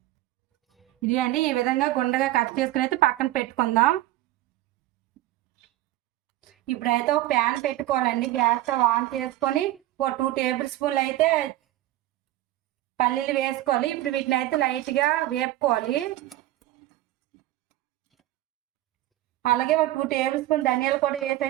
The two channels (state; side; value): quieter; left; 15.6 dB